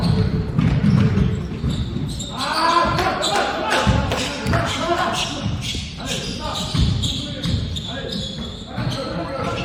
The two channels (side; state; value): both; identical; correlation 1.00